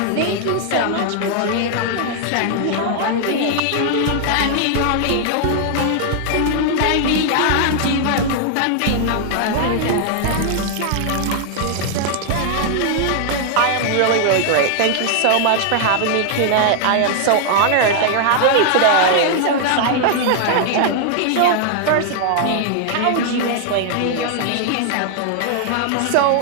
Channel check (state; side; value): different; both; correlation 0.00